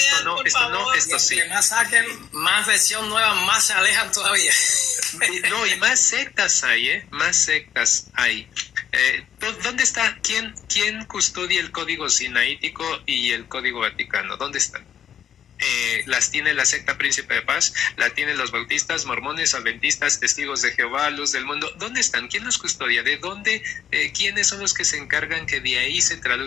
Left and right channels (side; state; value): right; quieter; 9.1 dB